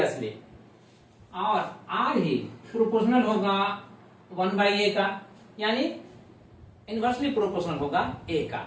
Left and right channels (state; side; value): identical; both; correlation 1.00